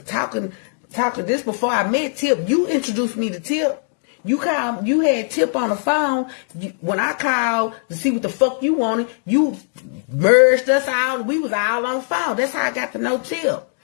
Talking. This before I met Tip. You introduced me to Tip. You had Tip on the phone. When I called to see what the fuck you wanted, you merged us out. We was all on the phone. That's how I got to know Tip.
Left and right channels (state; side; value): silent; right; 66 dB below the other